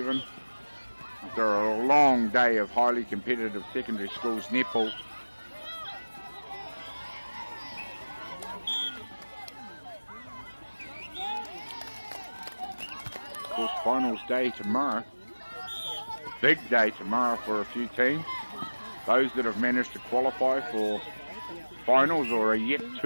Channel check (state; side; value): inverted; both; correlation -1.00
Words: After a long day of highly competitive secondary schools netball. Of course, finals day tomorrow. Big day tomorrow for a few teams. Those that have managed to qualify for finals or are yet